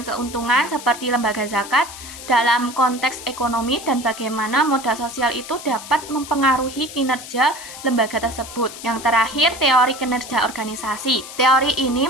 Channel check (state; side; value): noise; left; hiss, 13 dB below the sound